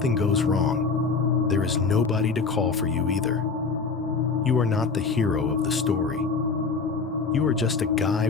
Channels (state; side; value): quieter; right; 4.7 dB